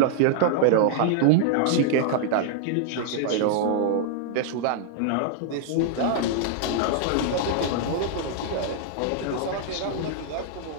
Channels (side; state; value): both; different; correlation -0.01